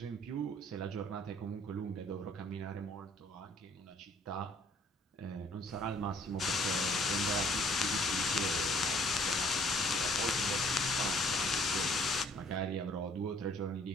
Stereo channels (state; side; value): normal; both; correlation 0.59